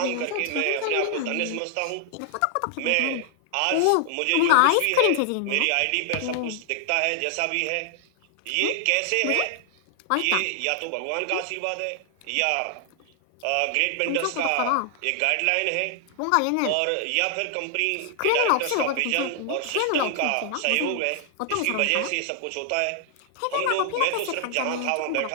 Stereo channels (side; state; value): both; different; correlation 0.00